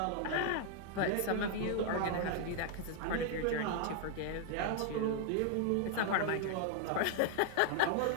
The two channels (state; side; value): different; both; correlation 0.00